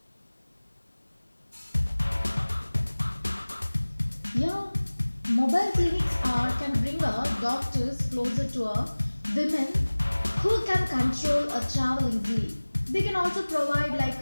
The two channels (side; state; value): both; inverted; correlation -1.00